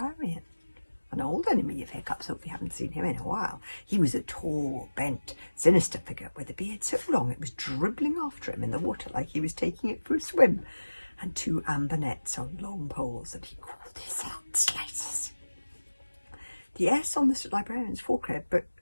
an old enemy of Hiccup's, if we haven't seen him in a while. He was a tall, bent, sinister figure with a beard so long it was dribbling after him in the water like he was taking it for a swim, and two amber nets on long poles that he called his heart slices. The S on the librarian's forehead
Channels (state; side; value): inverted; both; correlation -1.00